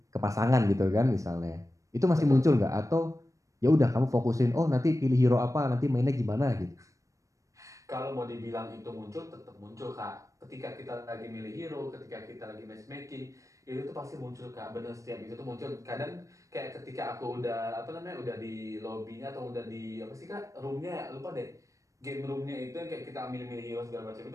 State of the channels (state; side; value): late; left; 0.16 ms